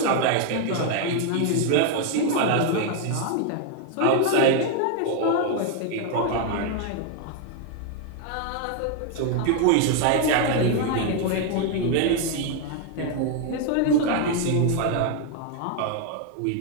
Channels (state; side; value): different; both; correlation 0.01